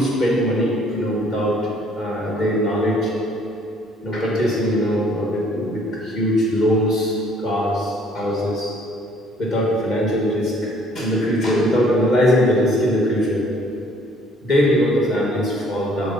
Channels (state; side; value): normal; both; correlation 0.60